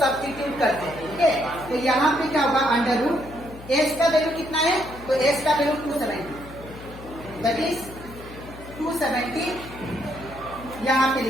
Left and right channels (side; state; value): left; noise; hum, 16 dB below the sound